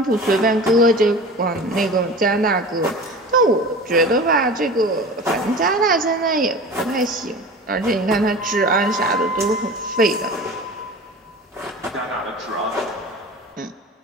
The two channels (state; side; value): normal; both; correlation 0.36